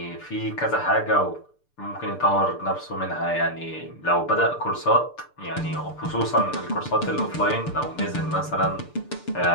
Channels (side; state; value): right; late; 6.8 ms